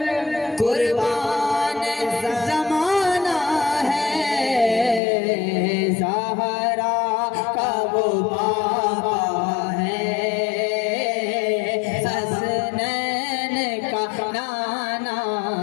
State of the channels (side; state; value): right; drops out; at 5.0 s